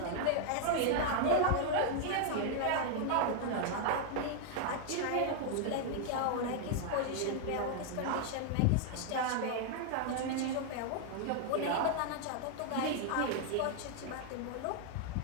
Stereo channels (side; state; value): both; different; correlation 0.00